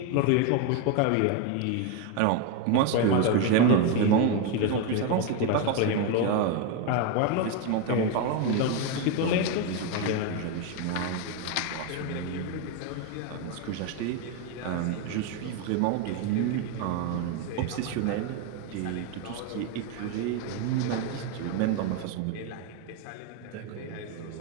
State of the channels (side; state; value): both; different; correlation 0.02